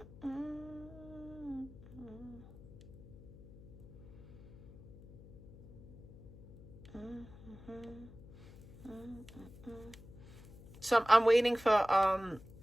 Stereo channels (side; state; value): left; noise; hum, 18 dB below the sound